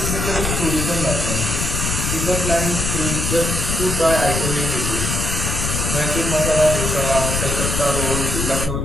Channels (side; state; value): left; noise; rumble, 1 dB below the sound